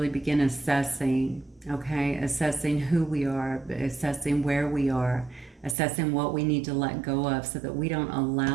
begin assessing, okay? Assessing who we are, assessing where we are, assessing what we need to let go of so that we don't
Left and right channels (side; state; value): left; drops out; at 5.8 s